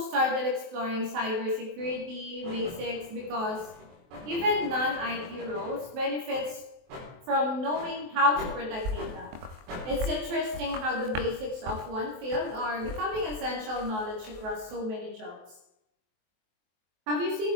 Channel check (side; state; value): left; late; 23 ms